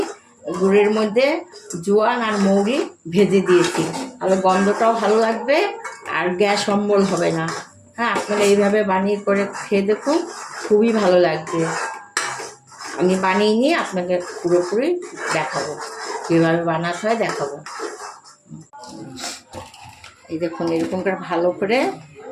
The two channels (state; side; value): identical; both; correlation 1.00